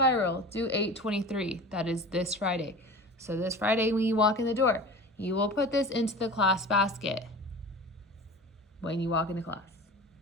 due 8/23. That is this Friday. So this Friday when you walk in the door, you will put this into the class basket when you walk into class.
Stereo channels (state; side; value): normal; both; correlation 0.36